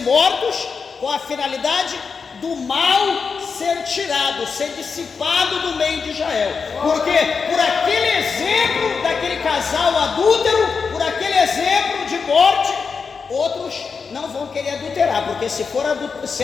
com a finalidade do mal ser tirado, ser dissipado do meio de Israel. Porque por aquele exemplo daquele casal adúltero, por aquele exemplo de morte, outros não vão querer adulterar, porque se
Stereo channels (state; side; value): quieter; right; 5.4 dB